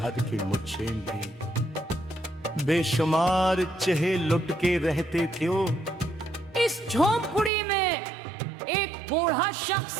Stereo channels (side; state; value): left; drops out; at 7.5 s